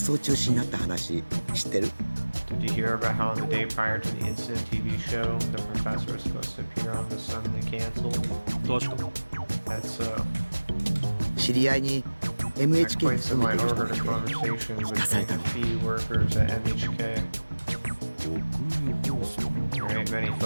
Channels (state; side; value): inverted; both; correlation -1.00